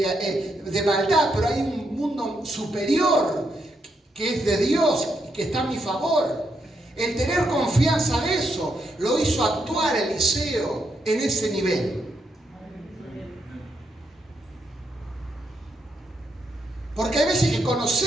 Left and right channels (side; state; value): both; normal; correlation 0.80